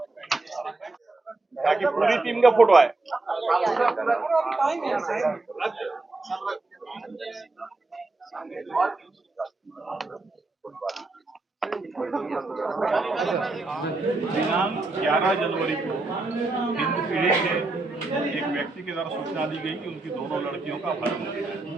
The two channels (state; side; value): quieter; left; 3.2 dB